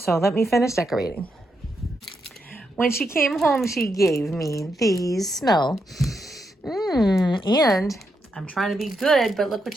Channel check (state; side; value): normal; both; correlation 0.82